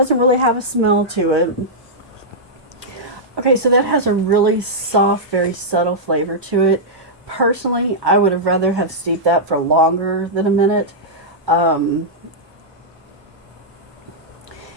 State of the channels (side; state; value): both; normal; correlation -0.09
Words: really have a smell to it. Okay, so that has a really soft, very subtle flavor to it. Personally, I would have rather have steeped that for longer than a minute.